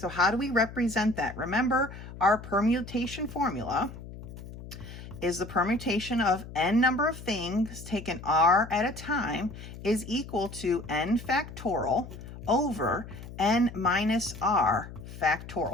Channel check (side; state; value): left; noise; hum, 13 dB below the sound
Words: how do we represent that? Remember, our permutation formula is the permutation of n number of things taken r at a time is equal to n factorial over n minus r